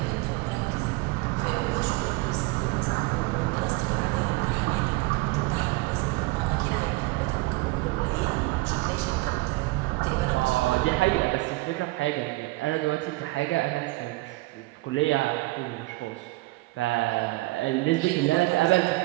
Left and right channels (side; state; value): left; quieter; 21.8 dB